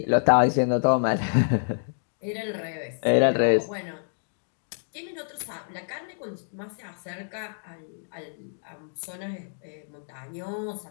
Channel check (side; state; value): right; silent; digital silence